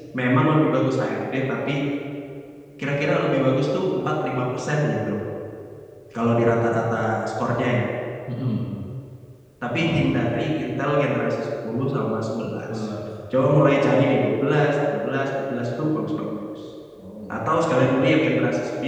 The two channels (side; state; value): both; identical; correlation 1.00